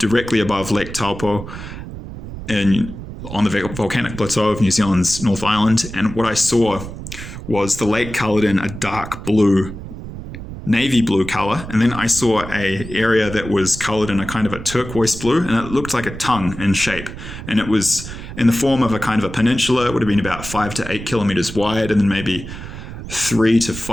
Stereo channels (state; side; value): noise; right; rumble, 11 dB below the sound